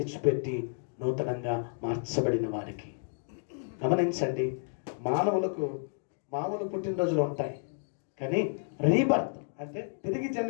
నూతనంగా మార్చబడిన వారికి. గమనించండి, మానవులకు మామూలు పుట్టినరోజులు ఉంటాయి, కానీ రీబర్త్ అంటే తిరిగి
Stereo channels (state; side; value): silent; right; digital silence